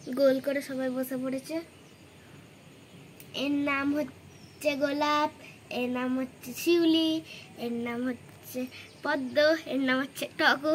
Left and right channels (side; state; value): both; identical; correlation 1.00